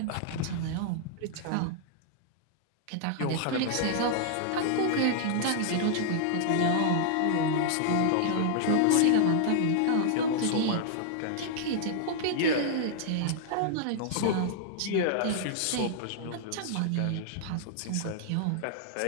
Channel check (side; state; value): both; different; correlation -0.01